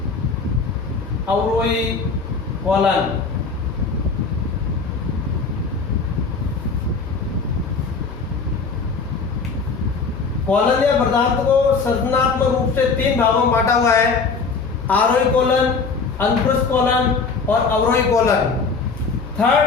अवरोही कोलन। कोलन या वर्धांत को संरचनात्मक रूप से 3 भागों में बांटा हुआ है: आरोही कोलन, अनुप्रस्थ कोलन और अवरोही कोलन।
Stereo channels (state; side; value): quieter; right; 4.7 dB